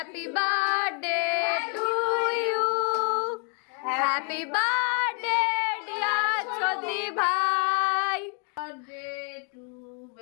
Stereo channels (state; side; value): quieter; right; 39.5 dB